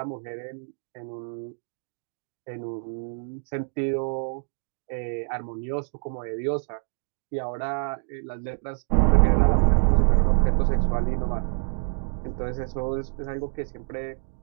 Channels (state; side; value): silent; left; digital silence